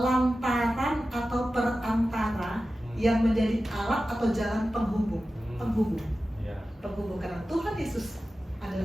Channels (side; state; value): both; normal; correlation 0.94